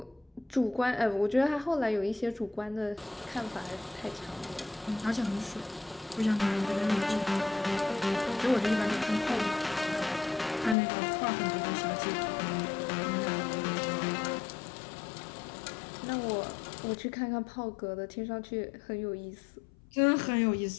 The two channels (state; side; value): drops out; right; at 10.8 s